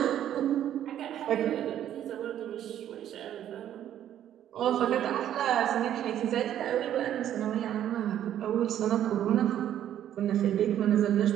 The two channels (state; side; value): quieter; left; 11.0 dB